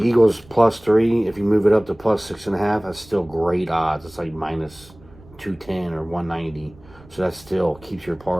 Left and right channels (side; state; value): right; noise; rumble, 24 dB below the sound